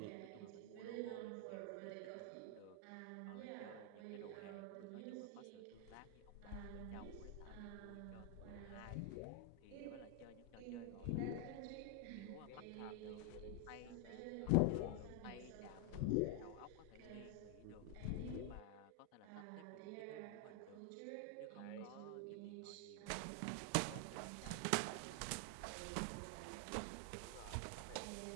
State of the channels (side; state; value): both; different; correlation 0.00